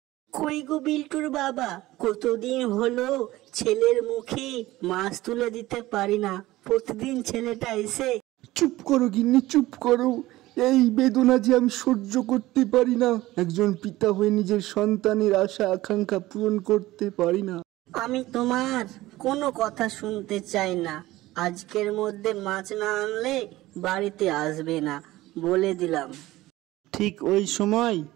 কই গো বিল্টুর বাবা, কতদিন হলো ছেলের মুখে মাছ তুলে দিতে পারি না। প্রতিদিন ছেলেটা এসে। চুপ করো গিন্নি, চুপ করো। এই বেদনা যে আমি সহ্য করতে পারি না। একজন পিতা হয়ে নিজের সন্তানের আশা আকাঙ্ক্ষা পূরণ করতে পারি না। আমি তোমার কোনো কথা শুনতে চাই না। আজকের মধ্যে মাছ না আনলে বাড়িতে আসবে না, বলে দিলাম। ঠিক ওই সময়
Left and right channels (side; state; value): left; quieter; 17.3 dB